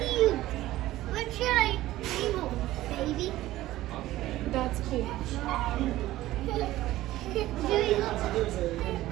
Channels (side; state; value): left; quieter; 15.8 dB